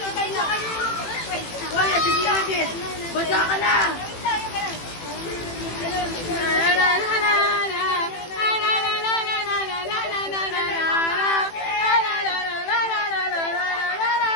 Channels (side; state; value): right; late; 18 ms